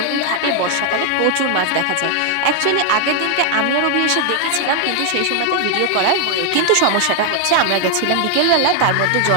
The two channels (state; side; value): different; both; correlation 0.00